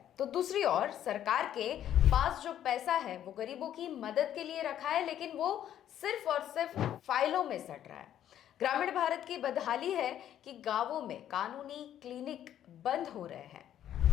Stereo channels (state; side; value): quieter; right; 10.9 dB